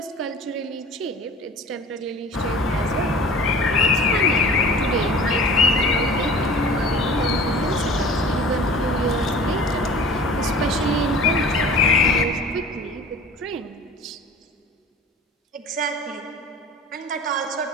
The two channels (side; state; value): both; normal; correlation 0.42